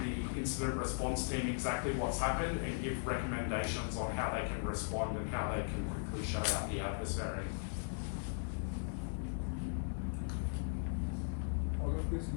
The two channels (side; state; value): right; silent; digital silence